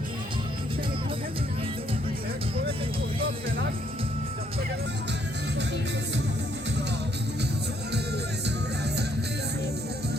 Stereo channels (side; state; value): both; normal; correlation 0.70